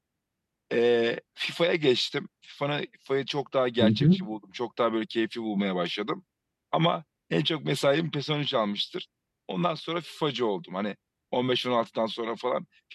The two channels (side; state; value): both; identical; correlation 1.00